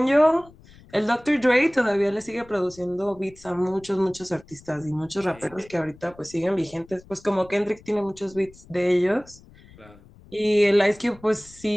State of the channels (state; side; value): noise; left; rumble, 24 dB below the sound